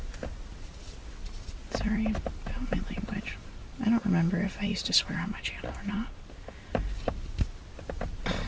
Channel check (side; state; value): both; identical; correlation 1.00